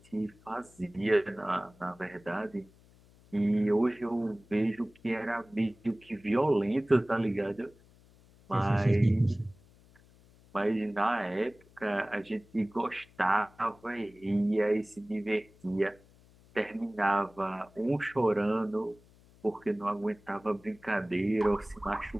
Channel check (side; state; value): left; noise; hum, 27 dB below the sound